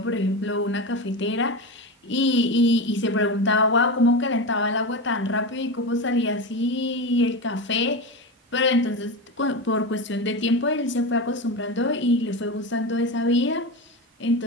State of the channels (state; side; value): normal; both; correlation 0.20